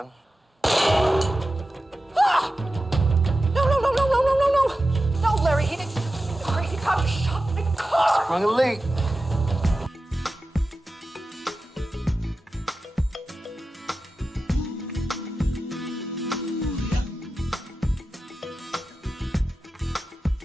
Ah! No, Larry, he didn't. The crazy cop just shot my car. Sprung a leak.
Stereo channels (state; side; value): normal; both; correlation 0.93